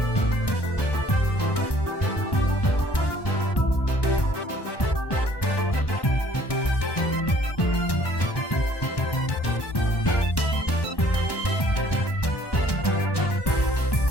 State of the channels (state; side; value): late; right; 1.1 ms